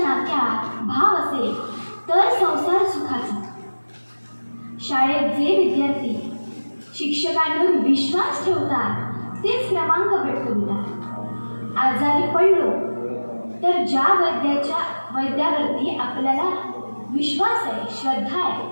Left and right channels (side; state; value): both; inverted; correlation -1.00